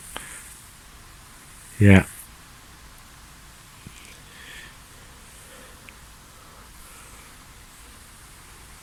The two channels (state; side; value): identical; both; correlation 1.00